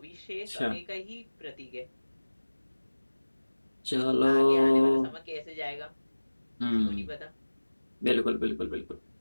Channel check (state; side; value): inverted; both; correlation -1.00